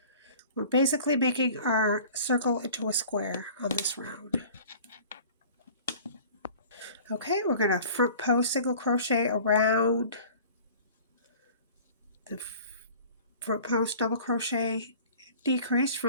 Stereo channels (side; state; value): both; inverted; correlation -0.45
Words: We're basically making our circle into a square on this round. Okay, we're going to front post single crochet around the front post double crochet decrease